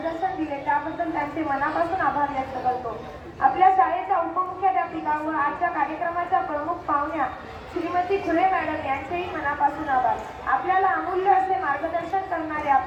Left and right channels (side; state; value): both; identical; correlation 1.00